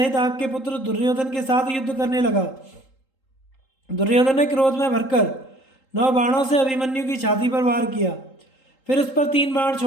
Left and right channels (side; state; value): right; late; 3.8 ms